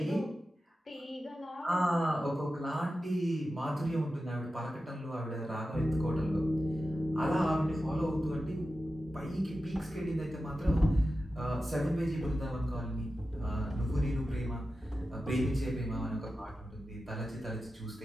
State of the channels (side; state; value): both; normal; correlation 0.93